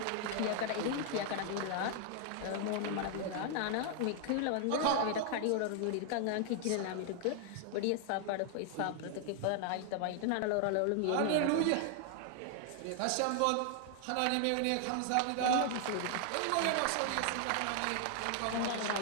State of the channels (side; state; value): both; different; correlation 0.00